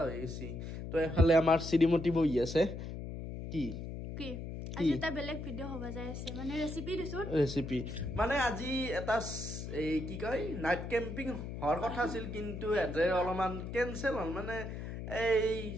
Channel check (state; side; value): noise; left; hum, 7 dB below the sound